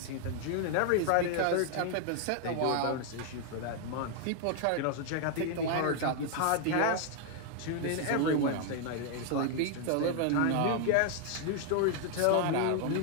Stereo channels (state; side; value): different; both; correlation 0.00